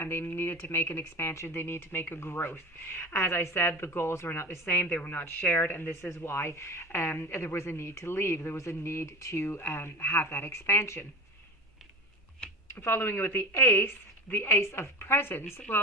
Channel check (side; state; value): both; normal; correlation 0.30